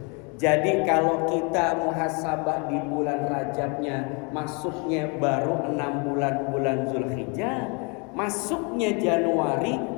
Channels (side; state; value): right; quieter; 33.2 dB